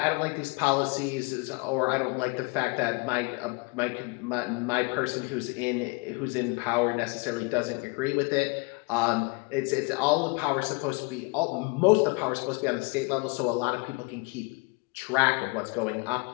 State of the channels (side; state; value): right; quieter; 29.5 dB